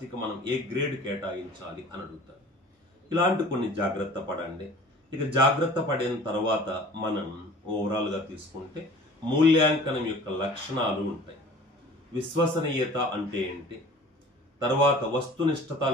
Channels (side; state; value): both; normal; correlation 0.45